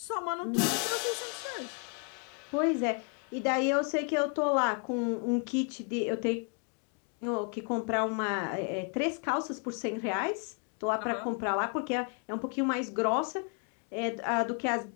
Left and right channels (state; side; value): quieter; right; 39.3 dB